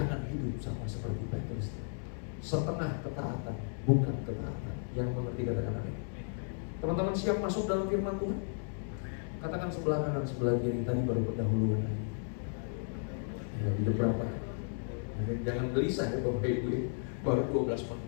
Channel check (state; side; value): silent; right; digital silence